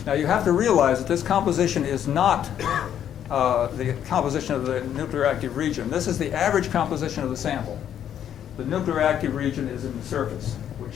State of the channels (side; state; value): right; quieter; 9.8 dB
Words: Now you have to realize that this composition is not the composition of the nuclear active region. This is the average composition of the sample. The nuclear active region is in the surface,